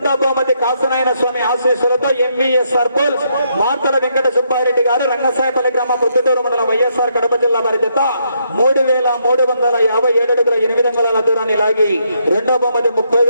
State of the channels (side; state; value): both; inverted; correlation -0.75